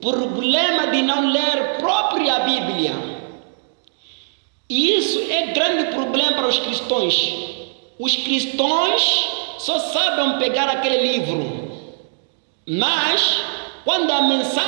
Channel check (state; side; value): silent; left; digital silence